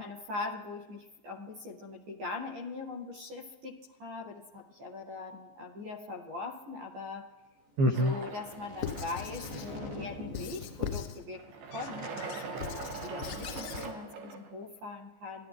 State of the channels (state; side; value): late; left; 14 ms